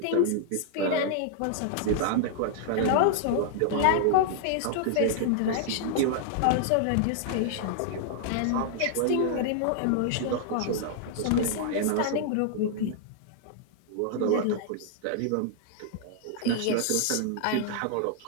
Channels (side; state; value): both; different; correlation -0.01